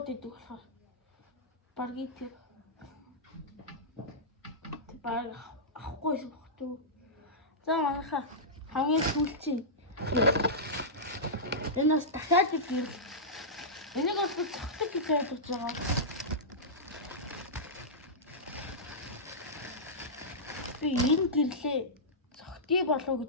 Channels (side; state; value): both; normal; correlation -0.13